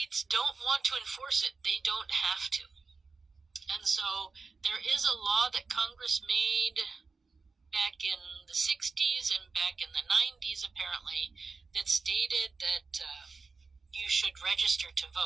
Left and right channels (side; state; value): left; quieter; 4.3 dB